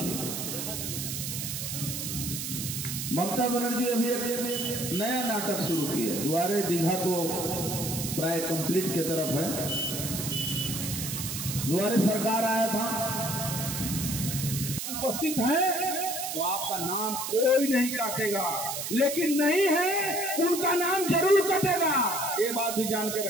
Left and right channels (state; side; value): noise; right; hiss, 4 dB below the sound